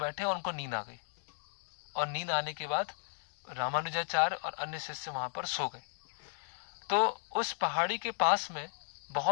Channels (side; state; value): right; silent; digital silence